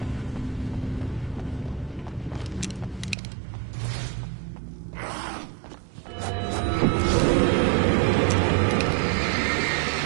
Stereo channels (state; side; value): drops out; left; at 3.2 s